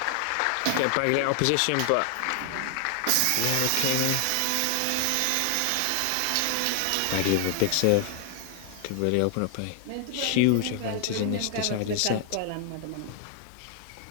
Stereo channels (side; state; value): both; different; correlation 0.00